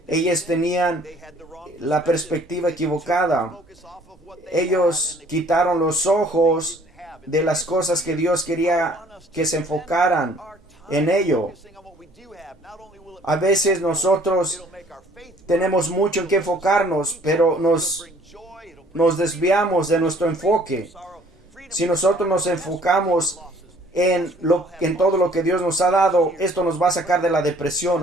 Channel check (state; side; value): normal; both; correlation 0.57